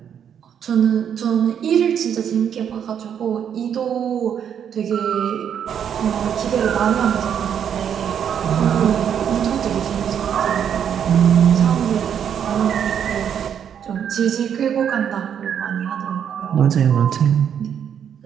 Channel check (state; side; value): quieter; left; 8.5 dB